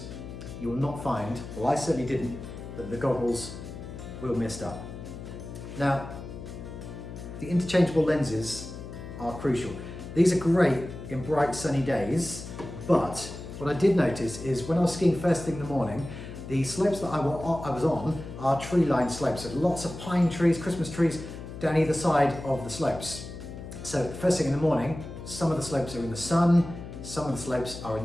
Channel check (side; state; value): left; noise; hum, 11 dB below the sound